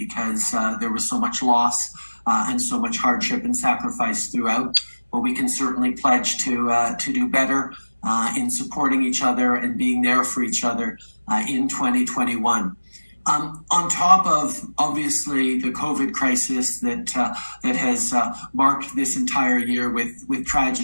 there was so much loss and so much hardship and sacrifice throughout. But we can certainly pledge to do better in supporting each other and being there for each other in 2021. On top of, obviously, the COVID crisis that has marked this entire year with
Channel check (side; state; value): both; inverted; correlation -1.00